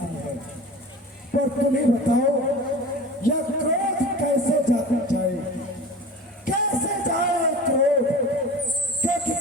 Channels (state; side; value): normal; both; correlation 0.36